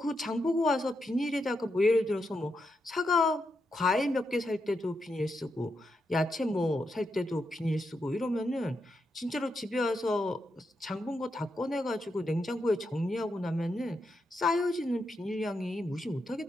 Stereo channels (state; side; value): normal; both; correlation 0.84